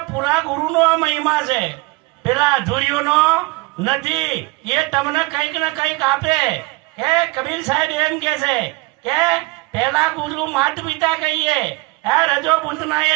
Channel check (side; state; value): left; quieter; 23.8 dB